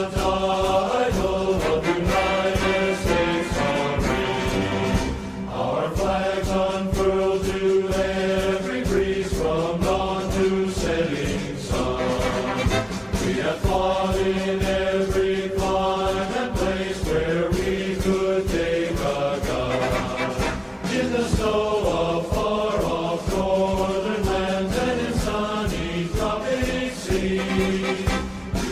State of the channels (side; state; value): both; identical; correlation 1.00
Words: title of United States of Free. Our flags unfurled to every breeze from dawn to setting sun. We have fought in every clime and place where we could take a gun. In the snow of far-off northern lands and in sunny tropic seas,